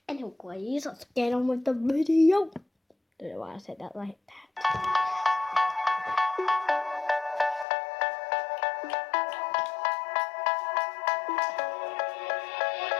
Anyways, let's get on with the video. Don't know why I said that like that.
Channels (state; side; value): drops out; right; at 7.7 s